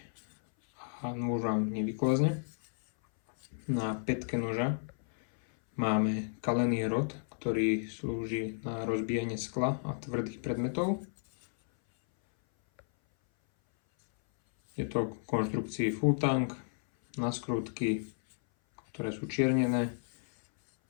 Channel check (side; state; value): right; silent; 56 dB below the other